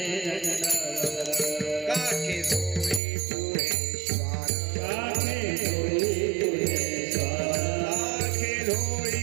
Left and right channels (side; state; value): left; drops out; at 3.0 s